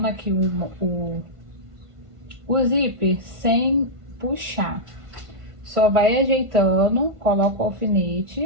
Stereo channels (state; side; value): late; left; 1.5 ms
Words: aqui o zíper sem puxar. Só vai ajeitando, coloca o